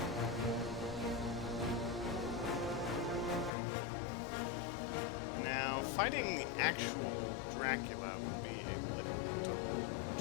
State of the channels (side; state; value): right; drops out; at 3.5 s